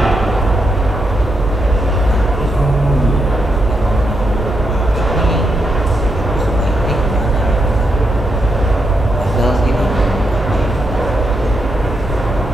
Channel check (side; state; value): both; normal; correlation 0.82